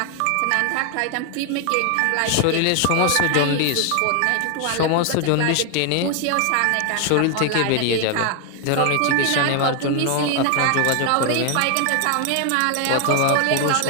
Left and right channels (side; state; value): both; different; correlation 0.00